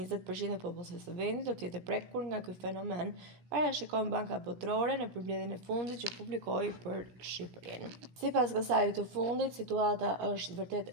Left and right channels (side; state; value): left; late; 17 ms